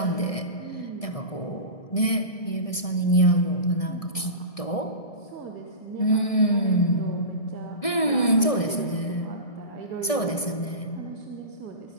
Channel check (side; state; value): right; late; 1.6 ms